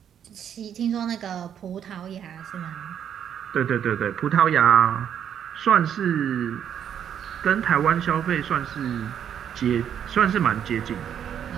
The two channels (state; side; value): quieter; left; 9.0 dB